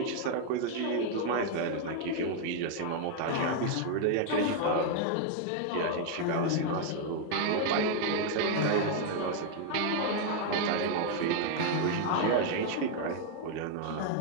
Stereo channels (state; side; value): different; both; correlation 0.00